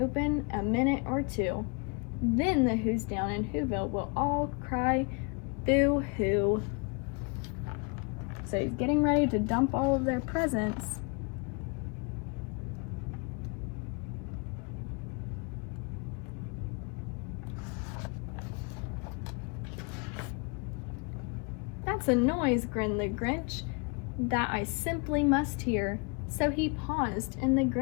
a minute or two. Then the Who's down in Whoville will all cry boo-hoo. So he's getting ready to dump all of their presents. That's a noise, grinned the Grinch, that I simply must hear. So he paused, and the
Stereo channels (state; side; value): quieter; right; 33.9 dB